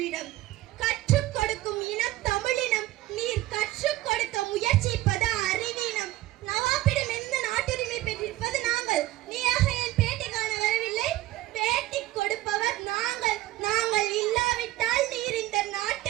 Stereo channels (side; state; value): left; quieter; 16.6 dB